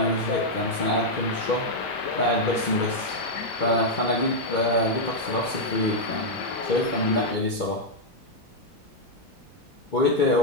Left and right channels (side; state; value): both; normal; correlation -0.02